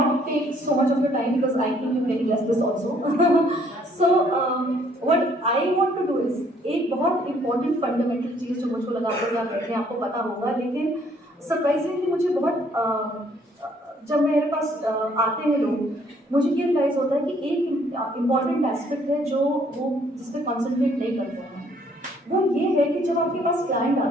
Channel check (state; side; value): normal; both; correlation 0.64